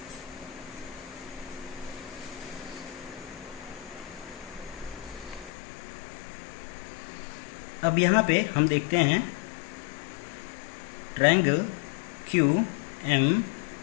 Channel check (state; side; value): drops out; right; at 5.5 s